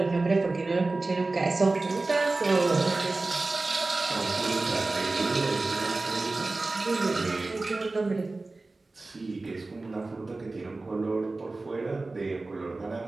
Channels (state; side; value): quieter; left; 3.3 dB